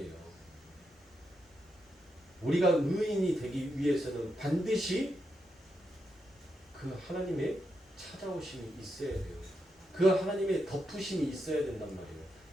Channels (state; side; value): normal; both; correlation 0.84